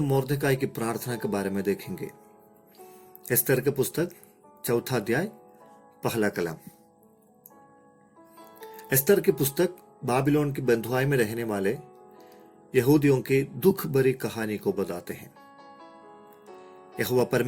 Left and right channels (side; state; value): both; identical; correlation 1.00